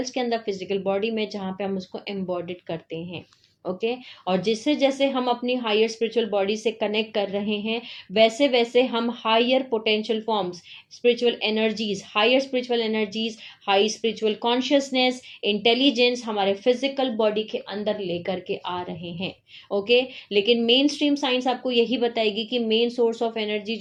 के अंदर, फिजिकल बॉडी में, जहाँ पे हम उसको एम्बॉडिड करते हैं। ओके, और जिससे जैसे हम अपनी हायर स्पिरिचुअल बॉडी से कनेक्ट कर रहे हैं, वैसे वैसे हम higher potential forms, spiritual energies, higher spiritual energies, high spiritual consciousness, intelligence हमारे फिजिकल बॉडी के अंदर लेकर के आ रहे हैं। ओके, लेकिन मेन स्ट्रीम साइंस आपको यही बताएगी कि मेन सोर्स ऑफ एनर्जी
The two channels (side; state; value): both; identical; correlation 1.00